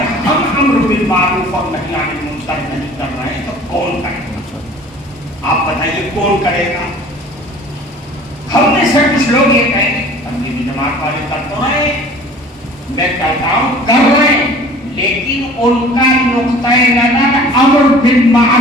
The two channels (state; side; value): normal; both; correlation 0.47